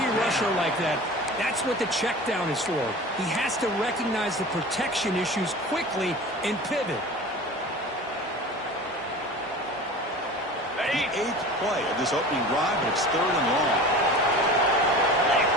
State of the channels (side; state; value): both; normal; correlation 0.37